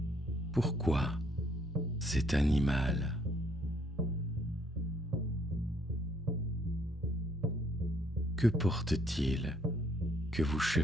Pourquoi cet animal? Que porte-t-il que vous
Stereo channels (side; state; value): both; normal; correlation 0.67